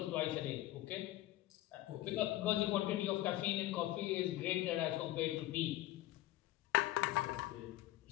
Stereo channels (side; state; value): right; quieter; 15.8 dB